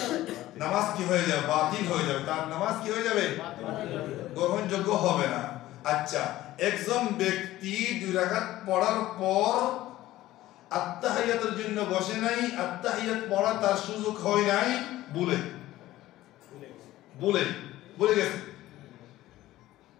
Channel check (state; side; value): quieter; right; 15.6 dB